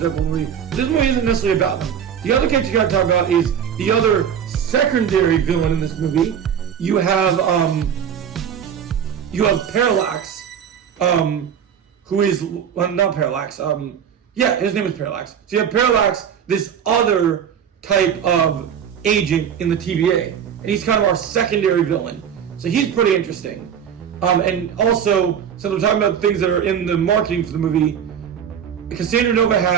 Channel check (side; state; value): left; quieter; 8.3 dB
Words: movie. This movie isn't necessarily about them. The other character you gotta talk about is the other secondary villain in this movie. You have Parallax, who is not Parallax. His name is Parallax. So you have Parallax, this other type of agent in the TVA, and he's kind of our secondary villain. So he's pretty interesting. And also, since we're talking about things that are in the marketing for the movie, Cassandra Nova